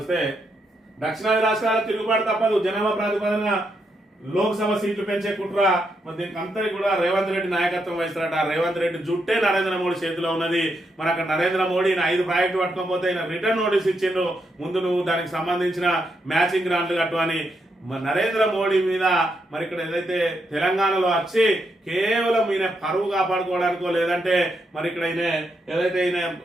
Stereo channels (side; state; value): both; normal; correlation 0.81